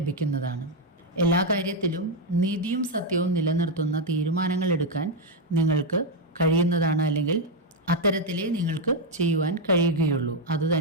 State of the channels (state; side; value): normal; both; correlation 0.02